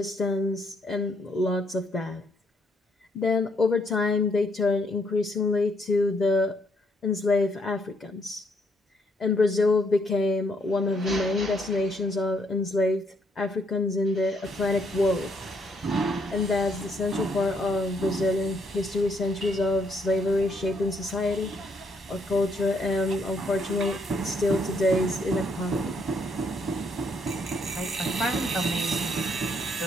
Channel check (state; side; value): normal; both; correlation 0.72